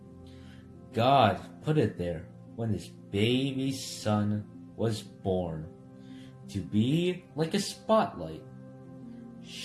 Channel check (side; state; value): both; identical; correlation 1.00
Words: God put it there when his baby son was born, to be like a spotlight,